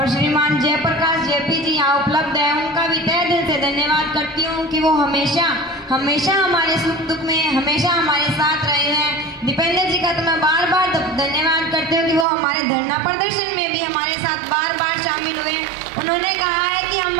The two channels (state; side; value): drops out; left; at 12.2 s